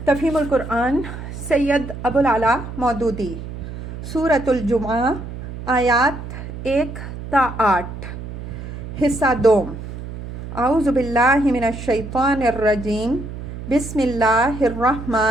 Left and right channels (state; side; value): noise; right; hum, 10 dB below the sound